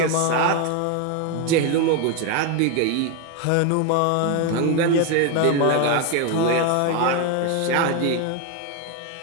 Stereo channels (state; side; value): different; both; correlation 0.02